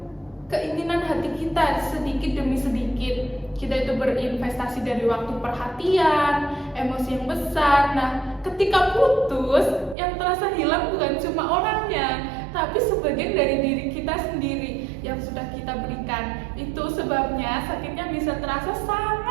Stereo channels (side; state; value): left; drops out; at 10.0 s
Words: keinginan hati kita sedikit demi sedikit. Kita itu berinvestasi dari waktu, perhatian, emosi yang besar. Nah, ketika putus, yang terasa hilang bukan cuma orangnya, tapi sebagian dari diri kita sendiri yang sudah kita berikan. Itu sebabnya sakitnya bisa terasa